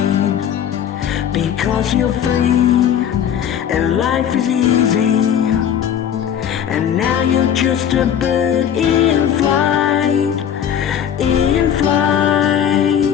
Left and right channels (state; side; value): quieter; right; 9.1 dB